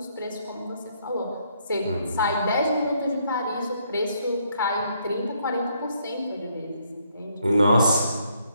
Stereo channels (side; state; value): both; inverted; correlation -0.71